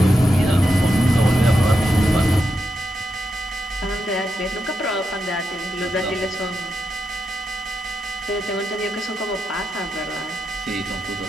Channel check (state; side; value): normal; both; correlation 0.85